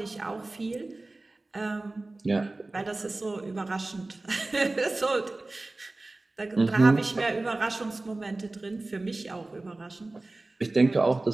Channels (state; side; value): quieter; left; 3.0 dB